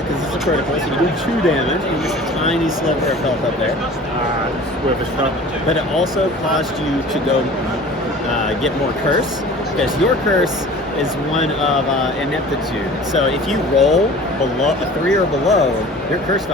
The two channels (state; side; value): normal; both; correlation 0.43